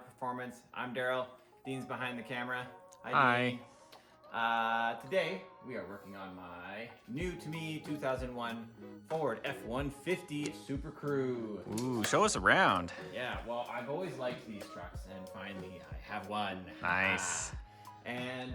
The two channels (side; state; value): both; identical; correlation 1.00